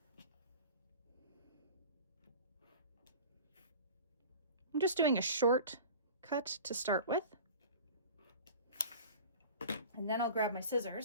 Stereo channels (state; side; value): inverted; both; correlation -0.38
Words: I'm just doing a short cut to start with. And then I'll grab my